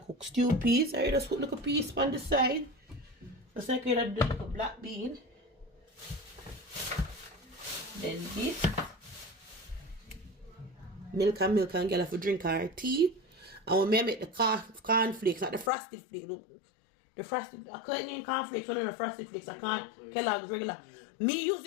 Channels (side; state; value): right; drops out; at 15.7 s